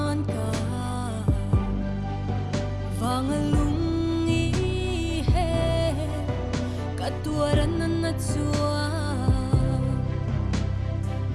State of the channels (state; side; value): identical; both; correlation 1.00